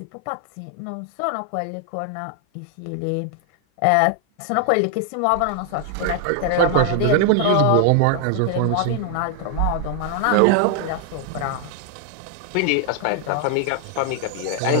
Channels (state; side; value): different; both; correlation 0.00